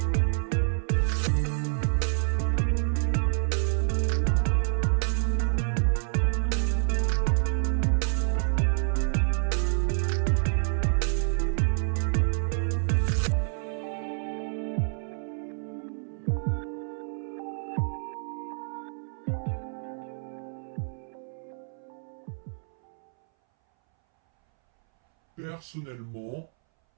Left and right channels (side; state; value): left; silent; 59 dB below the other